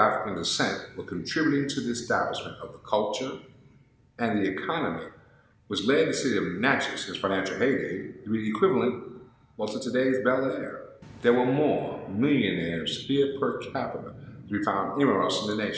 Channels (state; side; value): identical; both; correlation 1.00